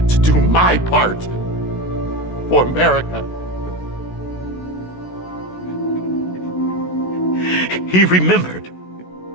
to do my part for America, he remembered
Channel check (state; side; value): late; right; 16 ms